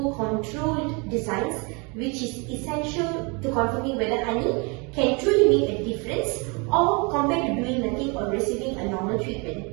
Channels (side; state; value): left; quieter; 31.0 dB